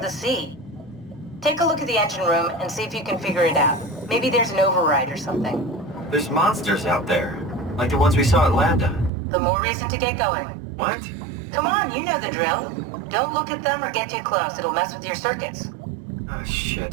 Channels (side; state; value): left; drops out; at 9.1 s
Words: the sea. Take a look at the engine room and see if you can figure it out. Maybe there's an override or something. There's monsters out there, like the ones we saw at Lambda. The more reason to get going. What? Come on, you know the drill. Don't look at them or get too close. It'll mess with your circuits. Oh,